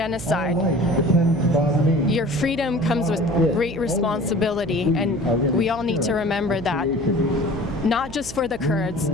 Your freedom comes with great responsibility, and we all need to remember that. Not just for the Kurds,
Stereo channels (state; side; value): noise; right; hum, 14 dB below the sound